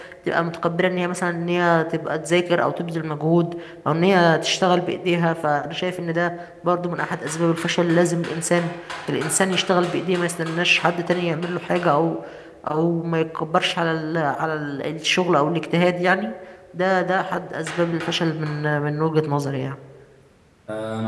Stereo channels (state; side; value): identical; both; correlation 1.00